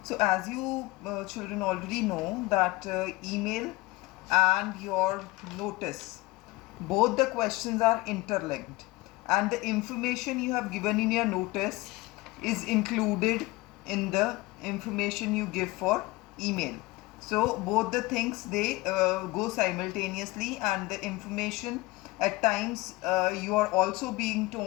So as you children already know that email and your notice, both the questions are interlinked, and the information you have given in your notice is included in the information you give for email. So both the things, they go simultaneously, and the information at times you are also being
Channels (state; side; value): quieter; right; 21.2 dB